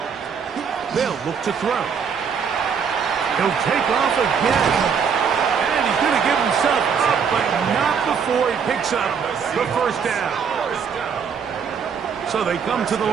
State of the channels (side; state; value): left; quieter; 6.6 dB